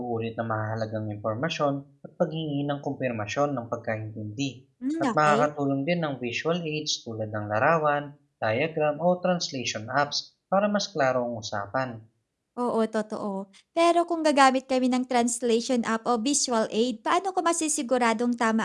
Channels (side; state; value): both; identical; correlation 1.00